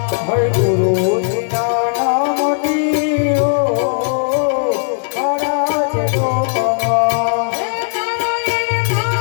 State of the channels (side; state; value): right; silent; digital silence